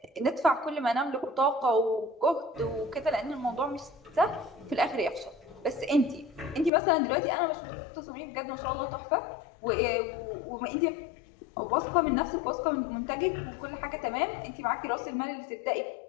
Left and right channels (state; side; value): drops out; right; at 6.7 s